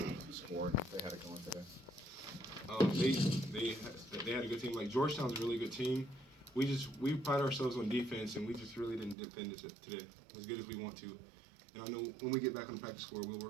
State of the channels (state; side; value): drops out; left; at 9.2 s